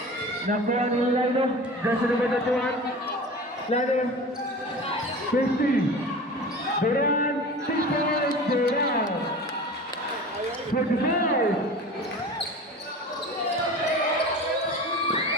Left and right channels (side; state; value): both; normal; correlation 0.35